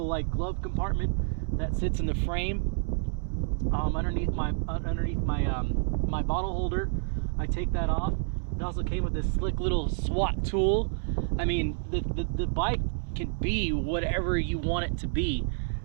like glove compartment that sits in the frame underneath my my bottle holder. I take that off. It also came with this slick little SWAT tool. I mean, the bike can be whatever you want it to be.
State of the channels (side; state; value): left; silent; 59 dB below the other